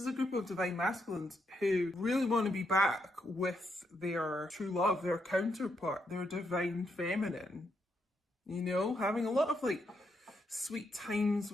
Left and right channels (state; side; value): normal; both; correlation 0.79